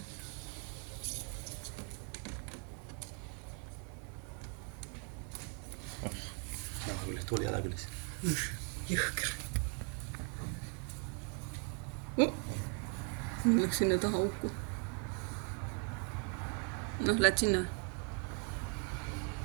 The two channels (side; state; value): left; quieter; 39.0 dB